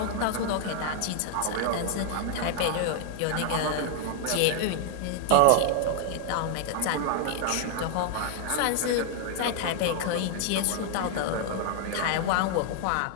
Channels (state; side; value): different; both; correlation 0.00